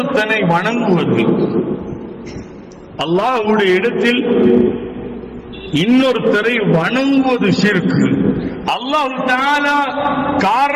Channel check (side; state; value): both; identical; correlation 1.00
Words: வணங்குவது. அல்லாஹ்வுடைய இடத்தில் இன்னொருத்தரை வணங்குவது ஷிர்க். அல்லாஹ் தஆலா